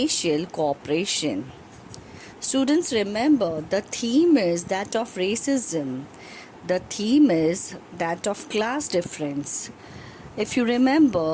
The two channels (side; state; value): both; identical; correlation 1.00